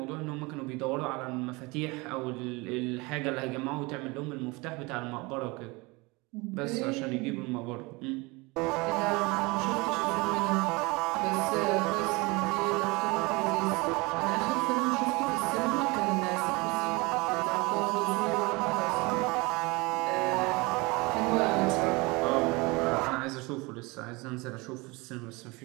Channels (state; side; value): quieter; left; 25.2 dB